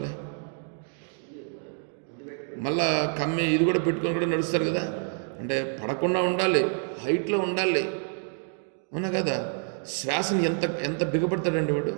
మళ్ళా కమ్మి ఇది కూడా పెట్టుకొని కూడా నడుస్తారు కదా. అంటే పడకుండా ఉండాలి, హైట్లో ఉండాలి, అవునా కదా. శ్వాసని ఎంత బిగపడతాడండి వాడు.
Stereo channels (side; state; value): left; silent; 55 dB below the other